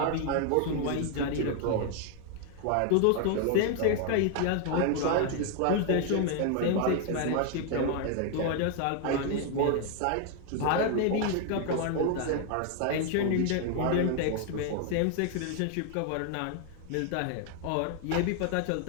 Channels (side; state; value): both; different; correlation 0.00